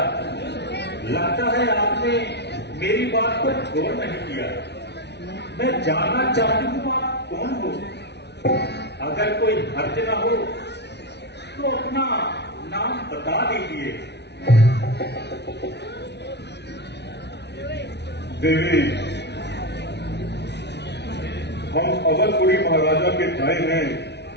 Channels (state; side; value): late; right; 0.50 ms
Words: लगता है आपने मेरी बात पर गौर नहीं किया। मैं जानना चाहती हूं आप कौन हो? अगर कोई हर्ज ना हो तो अपना नाम बता दीजिए। देवी, हम अवधपुरी महाराजा के भाई हैं